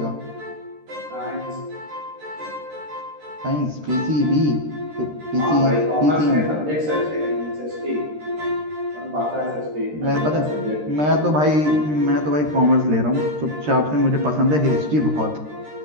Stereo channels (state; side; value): late; left; 13 ms